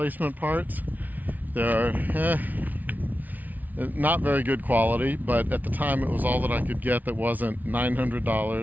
parts. They're not very good quality, but at the time it was all that I could get that wasn't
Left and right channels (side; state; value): left; late; 0.079 ms